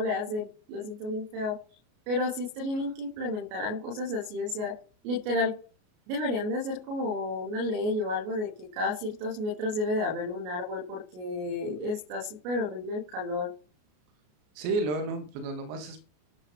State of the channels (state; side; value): late; left; 33 ms